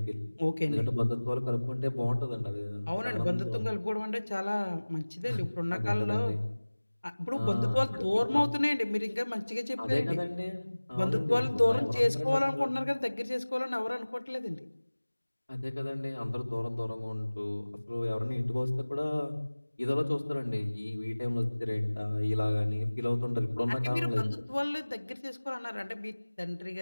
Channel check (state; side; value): inverted; both; correlation -1.00